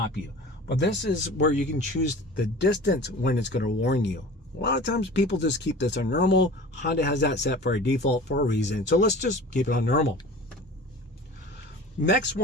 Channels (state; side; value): normal; both; correlation 0.40